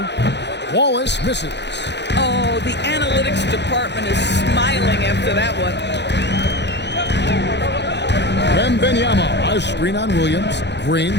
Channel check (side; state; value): right; late; 0.50 ms